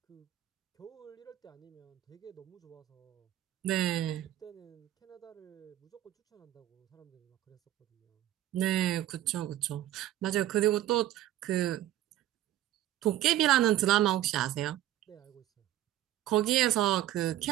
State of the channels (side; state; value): left; quieter; 13.2 dB